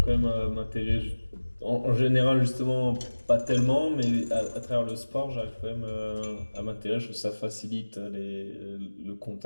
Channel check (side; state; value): both; inverted; correlation -1.00